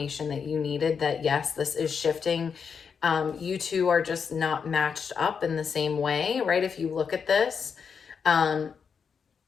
that you needed, that yes, this is shifting. You two are just not matched up in the same way, right? If you look at this,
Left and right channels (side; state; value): right; quieter; 6.3 dB